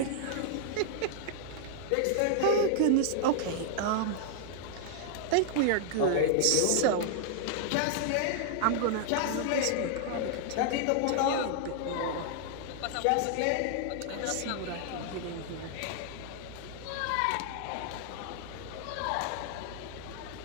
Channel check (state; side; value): different; both; correlation -0.01